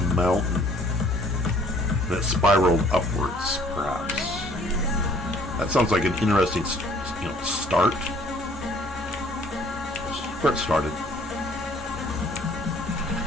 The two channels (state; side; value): normal; both; correlation 0.58